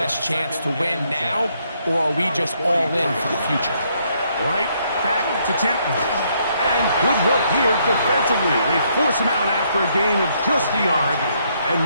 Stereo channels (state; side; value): inverted; both; correlation -0.72